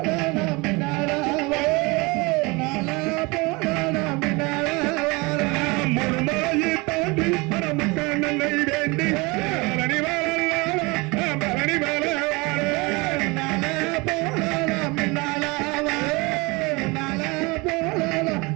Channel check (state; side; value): quieter; left; 25.8 dB